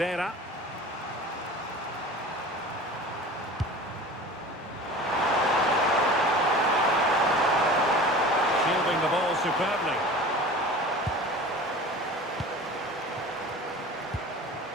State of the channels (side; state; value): both; normal; correlation 0.38